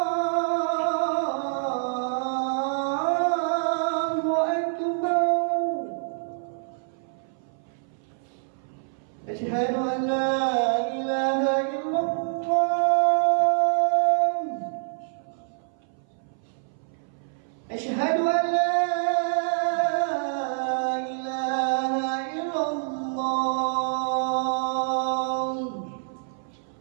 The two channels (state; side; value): silent; left; 59 dB below the other